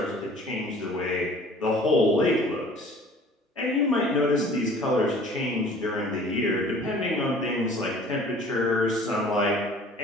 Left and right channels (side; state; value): both; normal; correlation 0.49